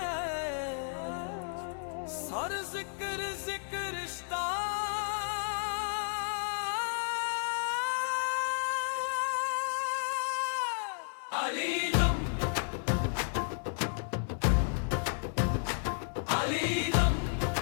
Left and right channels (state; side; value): silent; right; 56 dB below the other